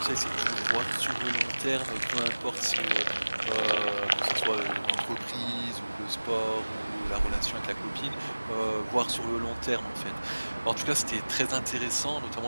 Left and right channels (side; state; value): both; inverted; correlation -1.00